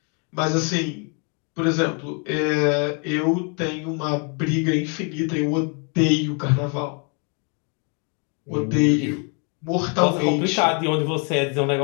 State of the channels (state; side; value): quieter; right; 37.1 dB